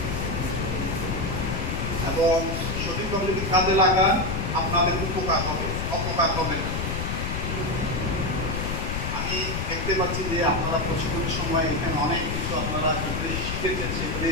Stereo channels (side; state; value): left; noise; rumble, 2 dB below the sound